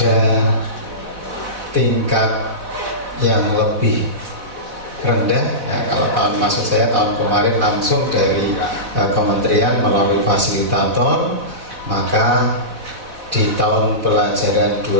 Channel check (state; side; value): late; left; 4.1 ms